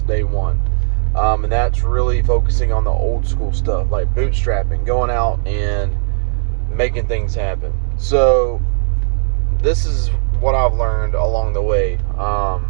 day one. And that's really focusing on the old school stuff, like bootstrapping, going out and making things happen. So this is what I've learned along the way.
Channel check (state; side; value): silent; left; 67 dB below the other